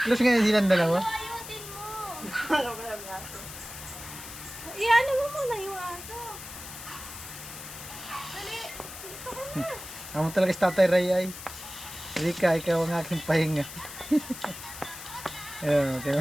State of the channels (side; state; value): left; noise; hiss, 12 dB below the sound